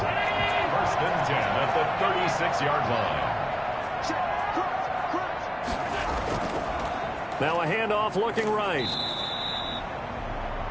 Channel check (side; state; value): both; identical; correlation 1.00